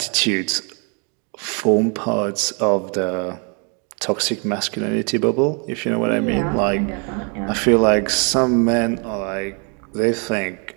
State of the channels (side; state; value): left; quieter; 36.5 dB